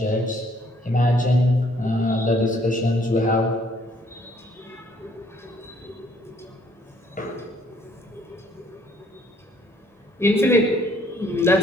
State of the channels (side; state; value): both; normal; correlation 0.64